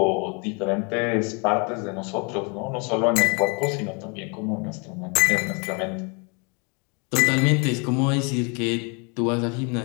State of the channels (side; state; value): right; quieter; 33.8 dB